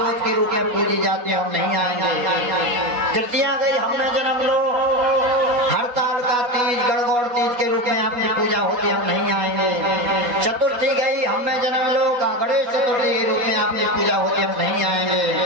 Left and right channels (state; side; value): late; left; 4.1 ms